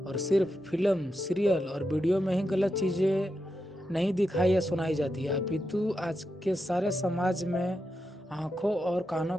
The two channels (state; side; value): normal; both; correlation 0.87